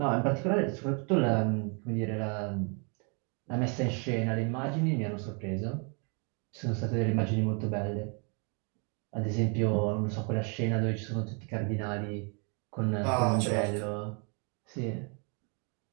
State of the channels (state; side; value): quieter; left; 36.2 dB